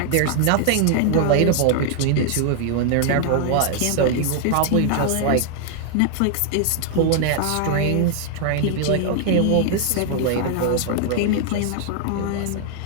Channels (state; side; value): different; both; correlation 0.00